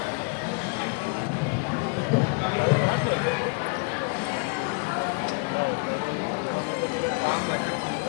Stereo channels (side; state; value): right; quieter; 35.5 dB